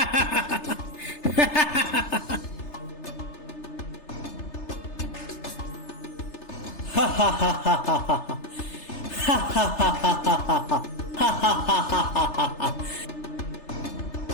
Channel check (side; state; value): right; late; 3.3 ms